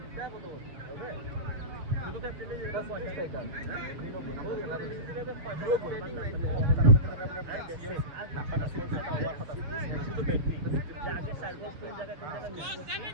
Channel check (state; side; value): late; left; 7.2 ms